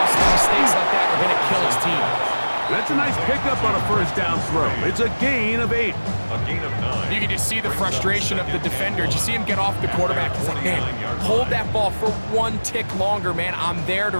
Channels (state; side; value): inverted; both; correlation -1.00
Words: mistakes like that are going to kill his team. That's a nice pickup on a 1st down throw. It's a gain of 8. A gain of 9. You can just see the frustration of the defender. Did you see him get off the quarterback? He's like, man, hold that ball for 1 tick longer, man. I'm there to